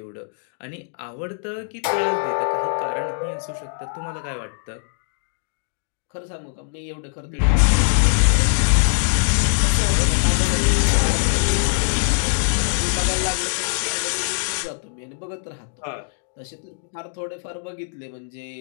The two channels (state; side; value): silent; right; digital silence